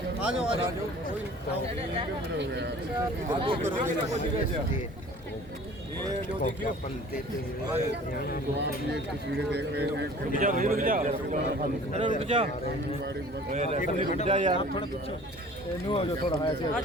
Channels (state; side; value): normal; both; correlation 0.47